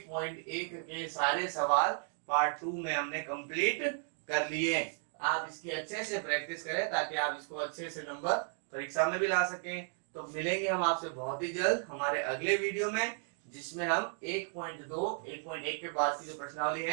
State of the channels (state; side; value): silent; left; 55 dB below the other